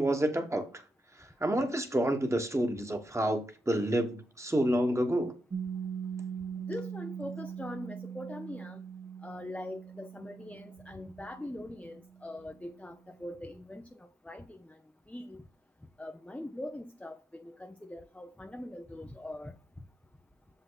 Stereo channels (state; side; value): normal; both; correlation 0.85